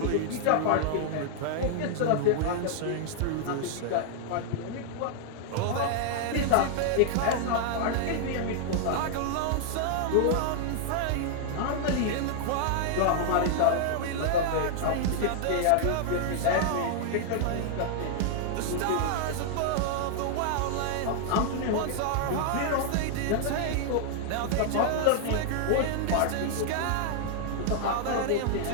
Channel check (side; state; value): both; different; correlation -0.01